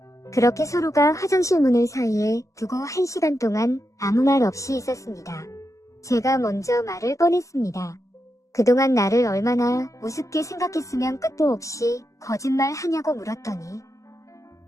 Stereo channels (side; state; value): right; late; 0.16 ms